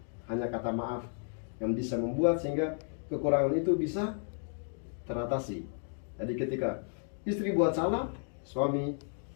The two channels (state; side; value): silent; right; 56 dB below the other